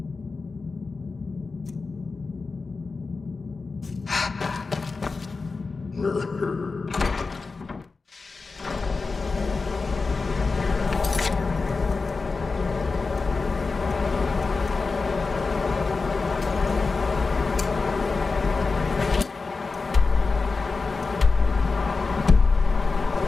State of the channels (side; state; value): right; quieter; 4.2 dB